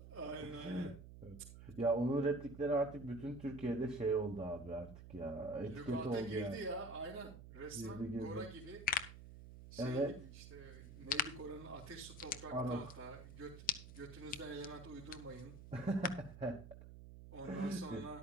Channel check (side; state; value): right; noise; hum, 14 dB below the sound